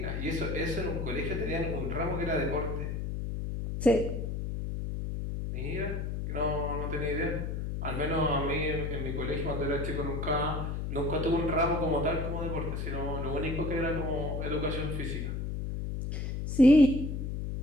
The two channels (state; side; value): noise; left; hum, 3 dB below the sound